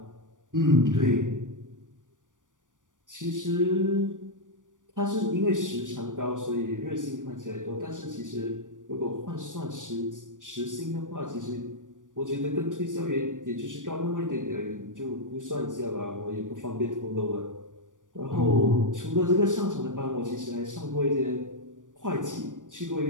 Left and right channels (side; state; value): left; late; 0.87 ms